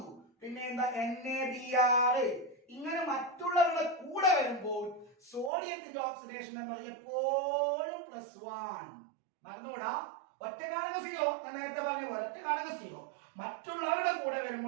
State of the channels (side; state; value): left; drops out; at 5.5 s